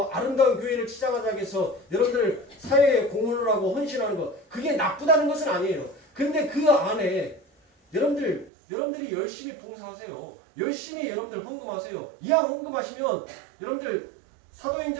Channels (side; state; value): left; drops out; at 8.5 s